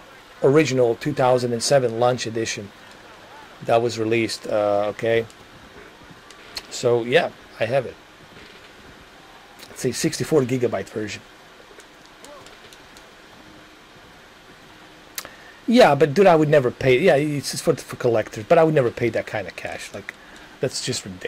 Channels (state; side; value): identical; both; correlation 1.00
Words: original 2007 launch edition that was released. Okay. So yeah, I have it. It's a 64 gigabyte version. Yeah, but dude, I would never pay. Yeah, it's just for collectors, but I would never pay that kind of cash. Like, that's just